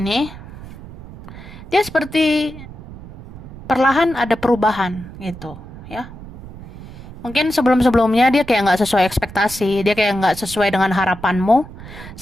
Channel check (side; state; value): right; noise; rumble, 15 dB below the sound